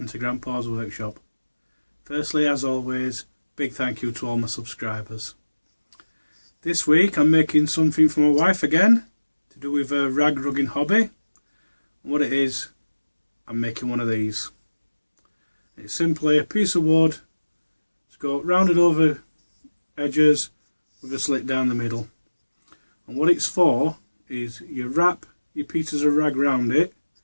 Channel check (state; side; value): inverted; both; correlation -1.00